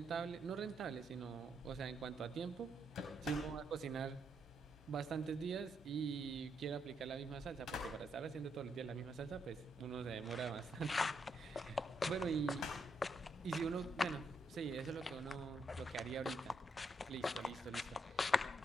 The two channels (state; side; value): normal; both; correlation 0.78